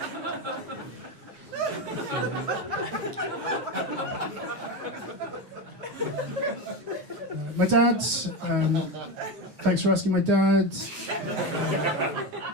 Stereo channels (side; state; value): left; late; 9.4 ms